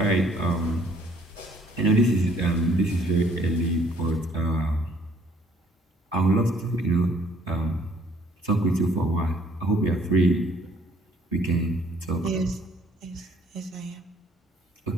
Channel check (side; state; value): both; normal; correlation 0.62